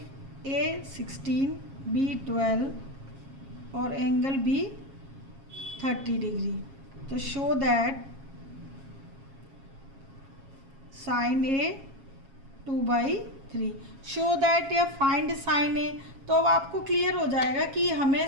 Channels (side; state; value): left; late; 7.4 ms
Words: A 16 B 12 और एंगल बी 30 डिग्री, तो show that sine A 2/3, show that या फाइंड साइन ए। तो अब आपको क्लियर हो जाएगा कि हमें